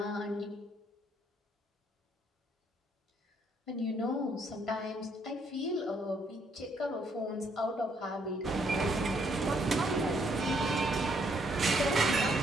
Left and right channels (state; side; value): normal; both; correlation 0.70